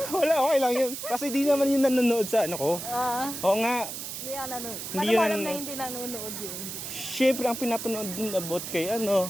Wala, okay lang yun. Kasi di naman yun nanonood sa ano ko. Oo nga, Hindi yan nanonood. Hindi Paano mo yun alam ano. na hindi nanonood yun? syempre ang pinapanood dun about kay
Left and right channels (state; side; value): noise; right; hiss, 7 dB below the sound